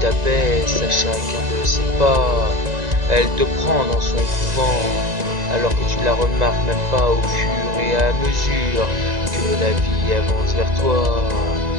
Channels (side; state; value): left; late; 1.9 ms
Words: à chacun de ses pas. Elle te prend dans son couvent, alors que tu ne la remarques même pas au fur et à mesure que la vie avance vers toi.